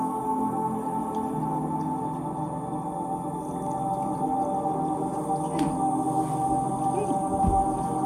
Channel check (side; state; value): both; identical; correlation 1.00